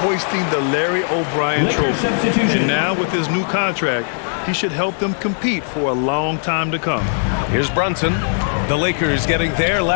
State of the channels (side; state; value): right; silent; digital silence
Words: hoisting the Larry O'Brien trophy. And now with his new contract, he should help them compete for a long time to come. Here's Brunson. The Lakers getting their